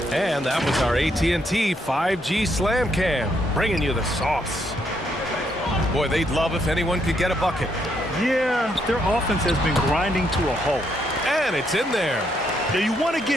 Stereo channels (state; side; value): normal; both; correlation 0.75